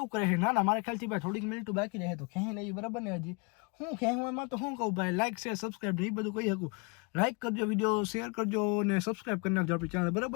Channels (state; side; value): quieter; right; 32.0 dB